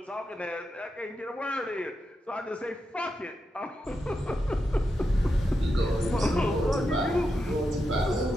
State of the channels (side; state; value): both; normal; correlation 0.87